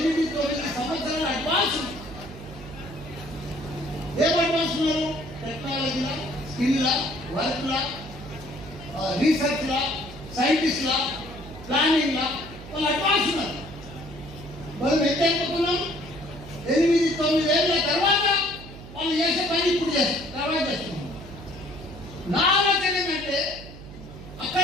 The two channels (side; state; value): right; noise; hum, 15 dB below the sound